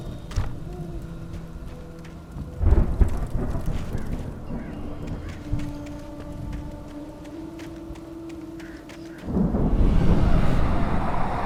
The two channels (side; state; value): both; identical; correlation 1.00